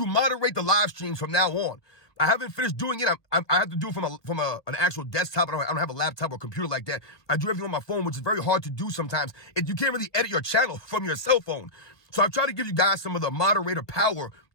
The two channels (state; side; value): late; right; 1.3 ms